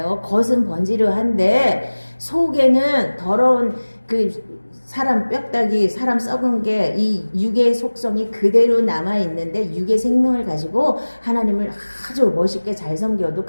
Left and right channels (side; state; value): both; inverted; correlation -1.00